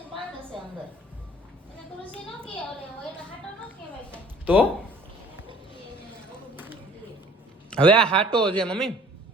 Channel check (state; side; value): normal; both; correlation 0.52